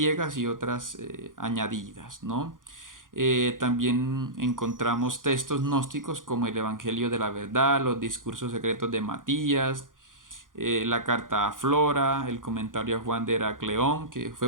y otras añadidas, ¿no? También encontramos textos gnósticos como el Evangelio de la Verdad, los discursos secretos de Matías, la carta a Flora, el comentario a Juan de Heracleón, que fue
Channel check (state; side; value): late; left; 0.89 ms